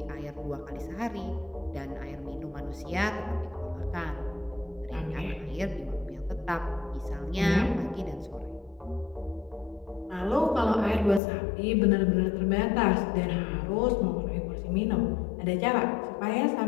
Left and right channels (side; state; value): right; drops out; at 11.2 s